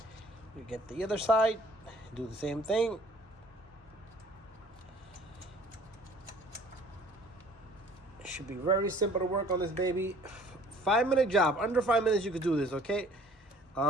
you get the other side, do the same thing. It should be very simple to work on this baby. 5-minute job, under 5 minutes you could do this, okay?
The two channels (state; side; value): normal; both; correlation 0.54